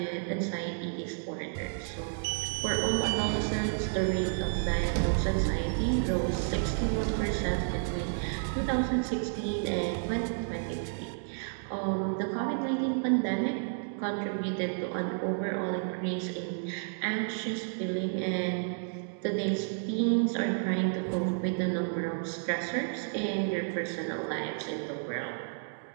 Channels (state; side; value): silent; left; digital silence